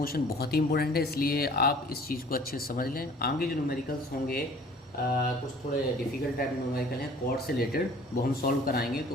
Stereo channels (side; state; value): both; normal; correlation 0.51